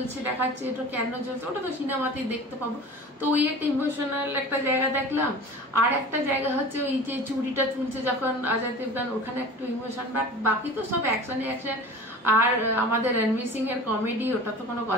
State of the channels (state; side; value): normal; both; correlation 0.38